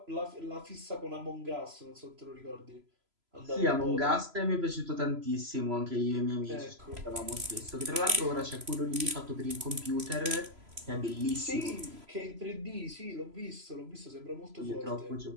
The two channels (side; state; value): left; late; 3.0 ms